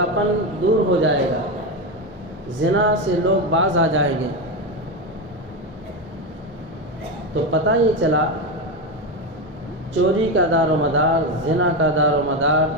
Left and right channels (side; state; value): both; normal; correlation 0.14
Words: دور ہو جائے گا، زنا سے لوگ باز آ جائیں گے۔ تو پتہ یہ چلا چوری کا دار و مدار، زنا کا دار و مدار،